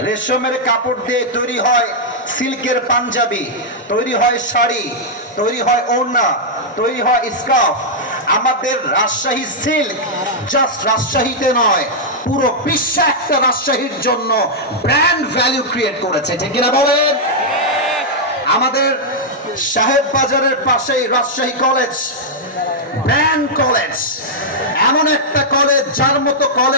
রেশমের কাপড় দিয়ে তৈরি হয় সিল্কের পাঞ্জাবি, তৈরি হয় শাড়ি, তৈরি হয় ওড়না, তৈরি হয় স্কার্ফ। আমাদের রাজশাহী সিল্ক জাস্ট রাজশাহীতে নয়, পুরো বিশ্বে একটা রাজশাহীর জন্য ব্র্যান্ড ভ্যালু ক্রিয়েট করেছে, ঠিক কিনা বলেন? আমাদের সাহেব বাজারের পাশেই রাজশাহী কলেজ, ব্র্যান্ড কলেজ, এমন একটা কলেজ যার মতো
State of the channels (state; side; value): normal; both; correlation -0.06